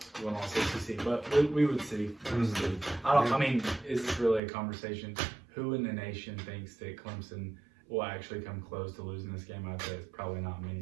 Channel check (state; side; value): drops out; left; at 4.4 s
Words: 1-loss ACC. But we would see. I mean, is this really a conversation? Who in the nation thinks that Clemson will actually come close to losing this game? I'd say it's probably not